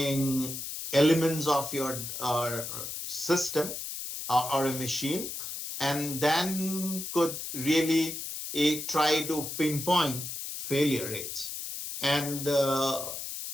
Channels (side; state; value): left; noise; hiss, 6 dB below the sound